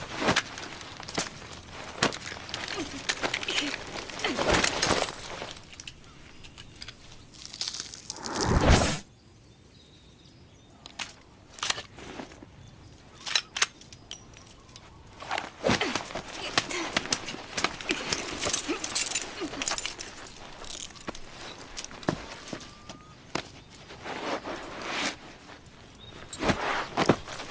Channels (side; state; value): both; identical; correlation 1.00